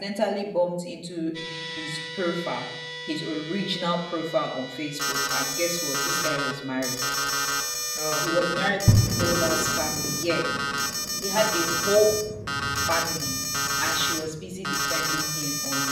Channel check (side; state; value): both; identical; correlation 1.00